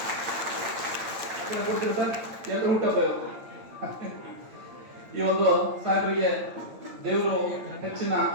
ಕೊಡ್ತೀರಿ ಸರ್. ಎಲ್ಲರೂ ಹುಟ್ಟಬ್ಬ ಈ ಒಂದು ಸಾಹೇಬರಿಗೆ ದೇವರು ಹೆಚ್ಚಿನ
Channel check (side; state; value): left; late; 9.0 ms